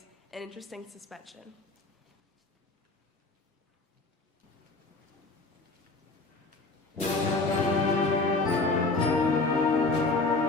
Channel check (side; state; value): right; quieter; 3.4 dB